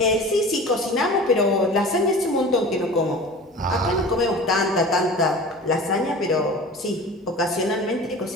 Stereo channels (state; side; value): normal; both; correlation 0.38